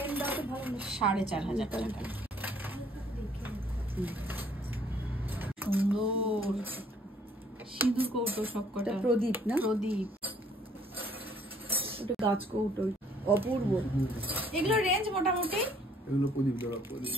দাও তো ভালো না? 4500 টাকা। সুন্দর সিঁদুর কৌটো সবকটা। এটা প্রদীপ না? প্রদীপ। ছোট গাছ কৌটো অপূর্ব। এগুলো রেঞ্জ মোটামুটি, এগুলো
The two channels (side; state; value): both; normal; correlation 0.61